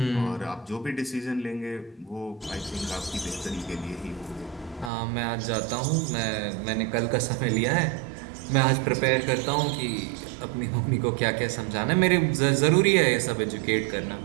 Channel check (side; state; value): left; drops out; at 4.9 s